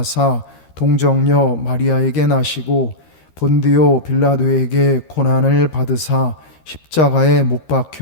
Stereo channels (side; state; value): right; late; 13 ms